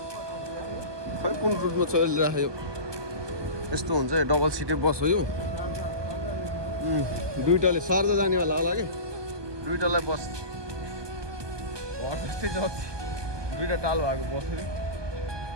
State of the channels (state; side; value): late; left; 1.2 ms